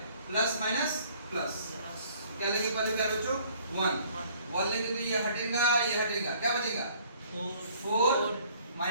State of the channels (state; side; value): inverted; both; correlation -0.58